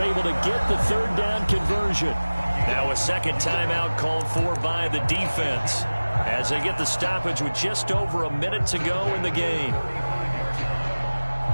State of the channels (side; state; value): both; inverted; correlation -1.00